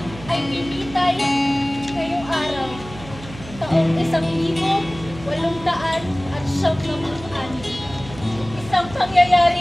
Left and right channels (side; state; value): right; noise; hum, 15 dB below the sound